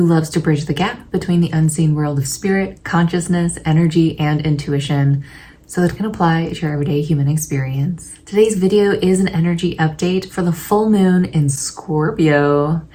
loves to bridge the gap between the unseen world of spirit, consciousness, energy, and intuition so that it can apply to your everyday human experience. Today's video is an energy update for the full moon in Scorpio,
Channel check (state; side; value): identical; both; correlation 1.00